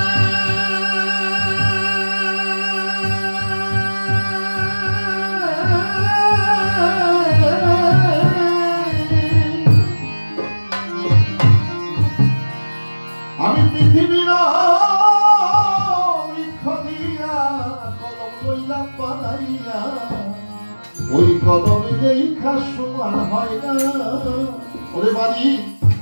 আমি পৃথিবীর বৃক্ষ দিয়া কলম লইলাম বানাইয়া ওই কলমে লেখা সমান হয় না ওরে বাড়ি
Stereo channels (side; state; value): both; inverted; correlation -1.00